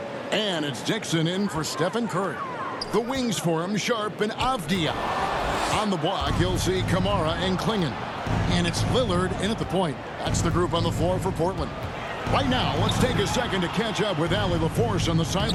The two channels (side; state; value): both; identical; correlation 1.00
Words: And it's Dixon in for Stephen Curry. The wings for him, Sharp and Avdia. On the block, you'll see Kamara and Klingon. And it's Lillard in at the point. That's the group on the floor for Portland. Right now, let's take a second to catch up with Allie LaForce on the